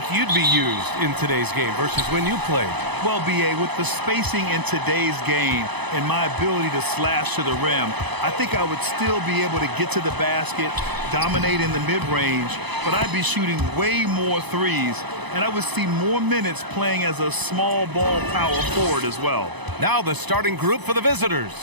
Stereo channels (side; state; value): left; late; 0.99 ms